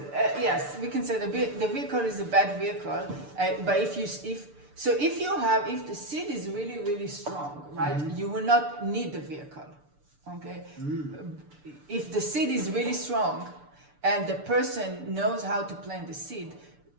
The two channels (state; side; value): late; left; 6.8 ms